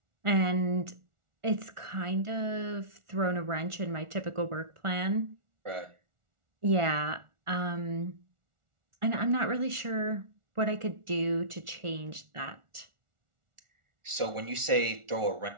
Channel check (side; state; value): left; late; 1.4 ms